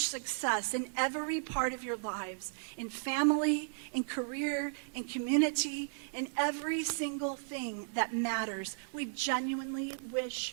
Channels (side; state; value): left; silent; digital silence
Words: in every part of your lives, in family, in career, in community, in every single thing that matters. We genuinely wish